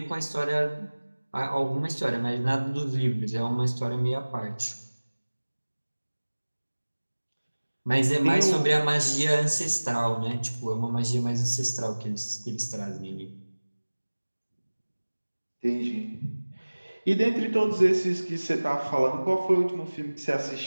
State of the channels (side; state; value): both; inverted; correlation -1.00